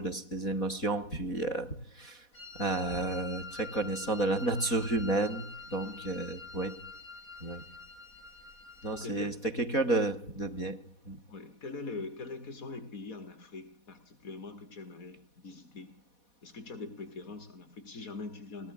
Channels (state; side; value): late; right; 4.1 ms